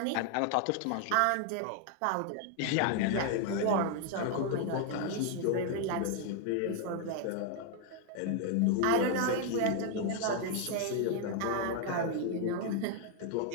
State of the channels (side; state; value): both; different; correlation 0.01